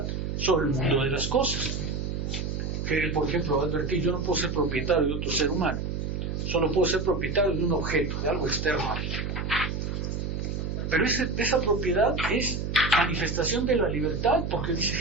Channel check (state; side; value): noise; right; hum, 3 dB below the sound